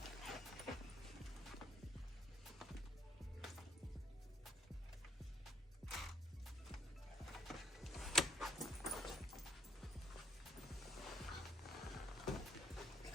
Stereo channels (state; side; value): normal; both; correlation 0.68